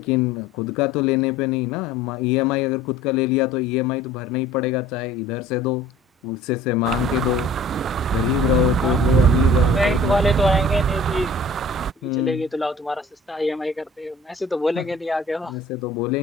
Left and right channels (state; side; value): normal; both; correlation 0.48